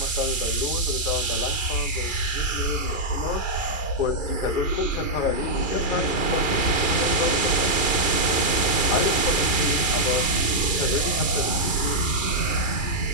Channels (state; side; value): late; right; 2.4 ms